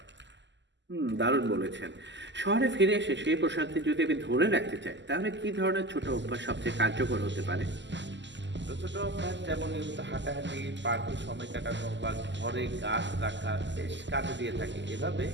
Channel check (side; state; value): left; late; 0.53 ms